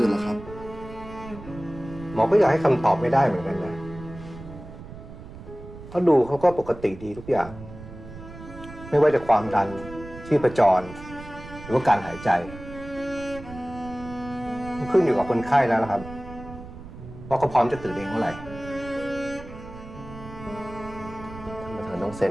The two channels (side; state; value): right; noise; rumble, 14 dB below the sound